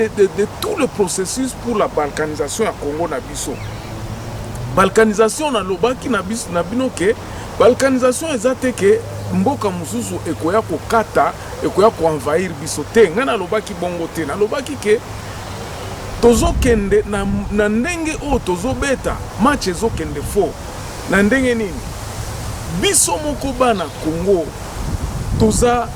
tout le processus pour la balkanisation à Congo Nabiso. Balkanisation na lobaki Nabiso Nabino ke balkanisation ezate ke mboka mususu ekoya ko kata ekoya ko envahir biso te ngana lobaki bongo te na lobaki ke tozo kende na ndenge o tozo beta match ezo kende fo na ndenge nini biso moko bana Congo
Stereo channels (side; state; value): both; identical; correlation 1.00